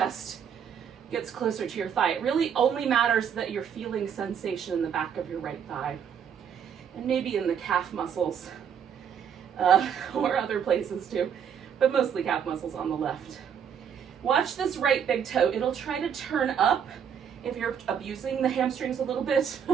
gets closer to your thigh. It really only matters that you're feeling sensation in the back of your right thigh and maybe in the calf muscles. Or other places too, but mostly calf muscles on the left. Watch this right big toe. It'll try to turn up if you're abusing the hamstrings a little bit.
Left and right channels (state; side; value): quieter; left; 7.9 dB